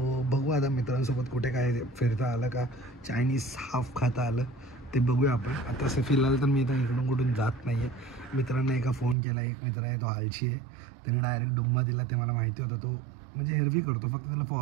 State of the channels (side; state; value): left; drops out; at 9.2 s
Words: बघू आता मित्रांसोबत कुठे काय फिरता आलं का, चायनीज हाफ खाता आलं ते बघूया आपण. आता असं फिलहाल तर मी आता इकडून कुठून जात नाही आहे. मित्रांना एका फ़ोन केला, एक मित्र आहे तो आळशी आहे, त्याने डायरेक्ट डुम्मा दिला. ते मला माहिती होतं तो म्हणजे हेरवी करतो, फक्त त्याला